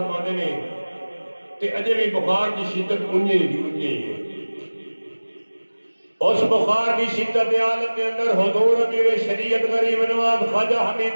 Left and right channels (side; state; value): both; inverted; correlation -1.00